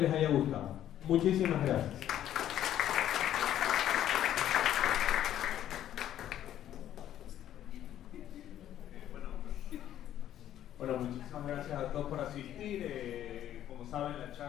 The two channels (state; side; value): quieter; right; 11.6 dB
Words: haya gustado. Muchísimas gracias. Bueno, muchísimas gracias a todos por asistir. Como saben, la